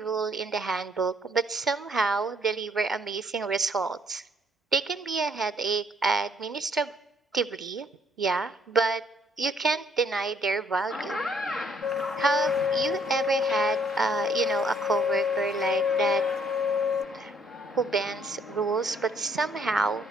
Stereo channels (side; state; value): both; normal; correlation 0.66